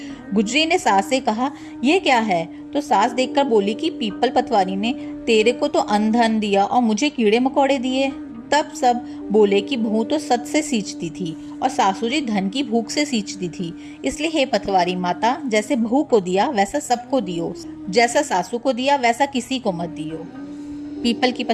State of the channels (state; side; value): identical; both; correlation 1.00